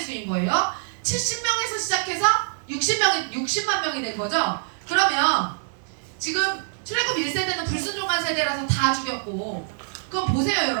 수인 거예요. 70명에서 시작해서 60만 명이 된 거죠. 그러면 지금 출애굽 1세대는 불순종한 세대라서 다 죽였고, 그럼 보세요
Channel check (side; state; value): left; silent; 62 dB below the other